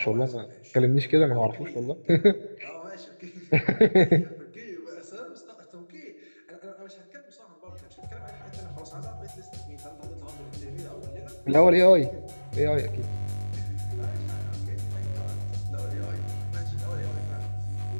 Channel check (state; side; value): inverted; both; correlation -1.00